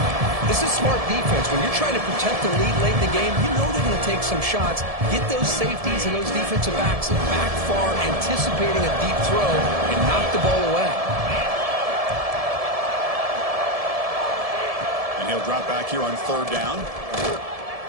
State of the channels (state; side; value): late; left; 1.7 ms